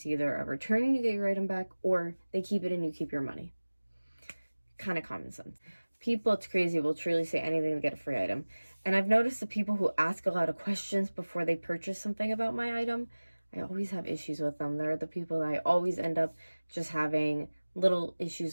either a return and you get your item back, or they keep it and you keep your money. Kind of common sense. People, it's crazy, will truly say anything to get a free item. And I've noticed the people who ask a lot of questions before they purchase something about my item, I always have issues with them. They're the people that I always end up just having little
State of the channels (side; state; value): both; inverted; correlation -1.00